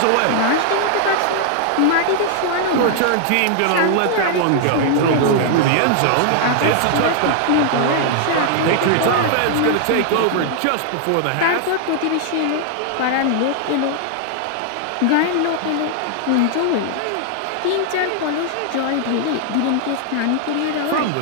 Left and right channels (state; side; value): different; both; correlation 0.00